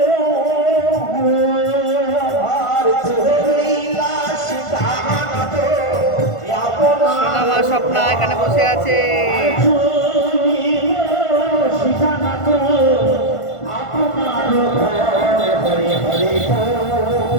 সোনামা স্বপ্না এখানে বসে আছে।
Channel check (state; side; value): late; right; 1.5 ms